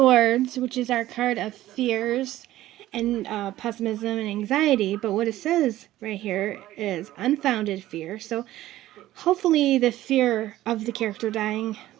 which is our card of fears and pessimism and anxiety. But what it says right here is unfounded fear. So hopefully the fear of the character dying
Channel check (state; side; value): quieter; left; 14.9 dB